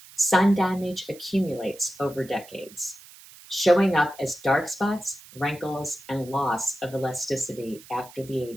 Sun damage accumulates over decades, showing up as dark spots, wrinkles, and loss of elasticity after the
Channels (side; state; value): right; noise; hiss, 20 dB below the sound